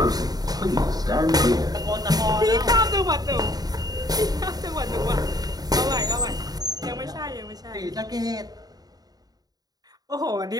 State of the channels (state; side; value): late; left; 0.19 ms